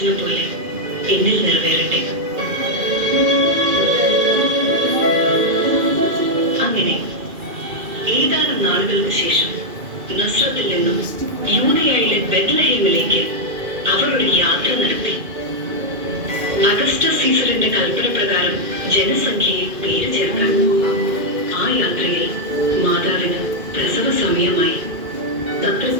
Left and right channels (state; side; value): late; left; 2.4 ms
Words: പോലെ എന്നിൽ നിറവേറട്ടെ. അങ്ങനെ ഏതാനും നാളുകൾക്ക് ശേഷം നസ്രത്തിൽ നിന്നും യൂദയായിലെ ബെത്ലഹേമിലേക്ക് അവർ ഒരു യാത്ര നടത്തി. അഗസ്റ്റസ് സീസറിന്റെ കൽപ്പന പ്രകാരം ജനസംഖ്യയെ പേര് ചേർക്കാൻ. ആ യാത്രയിൽ മാതാവിന് പ്രസവ സമയമായി.